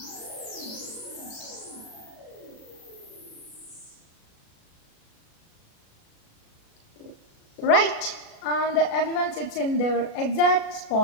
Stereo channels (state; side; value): late; right; 37 ms